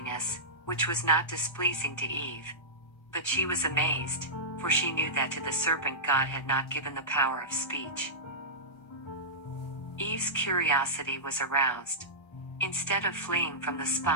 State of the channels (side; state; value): right; late; 1.3 ms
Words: which was not displeasing to Eve. But she was amazed, for she knew that to the serpent God had not given the power of speech. Eve's curiosity was aroused. Instead of fleeing from the